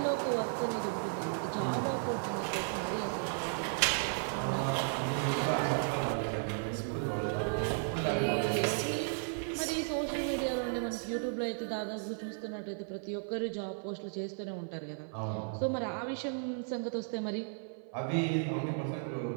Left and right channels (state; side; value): silent; left; 55 dB below the other